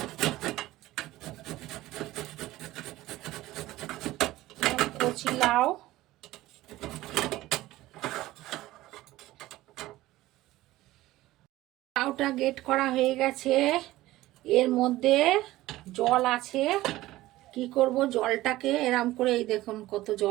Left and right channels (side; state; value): left; quieter; 16.8 dB